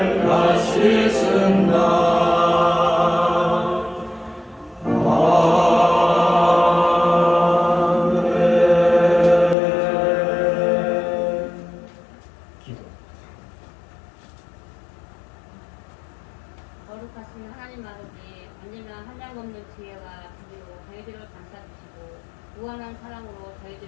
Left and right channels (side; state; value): right; drops out; at 9.6 s